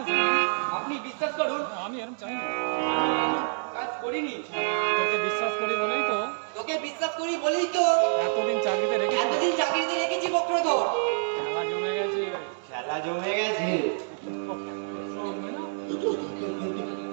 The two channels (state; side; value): silent; left; digital silence